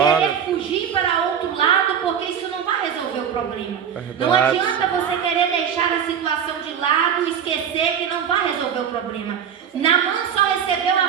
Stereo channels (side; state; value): left; quieter; 8.1 dB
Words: fugir para outro lado, porque isso não vai resolver o problema. Não adianta você querer deixar a situação de lado e esquecer que não vai resolver o problema. Naamã só recebeu